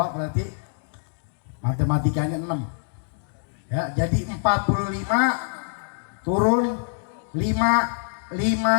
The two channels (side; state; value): right; silent; digital silence